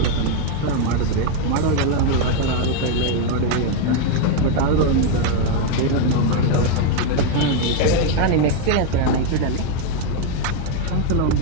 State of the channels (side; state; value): both; different; correlation 0.00